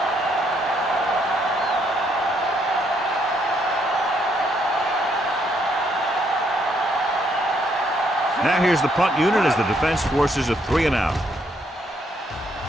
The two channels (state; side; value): normal; both; correlation 0.72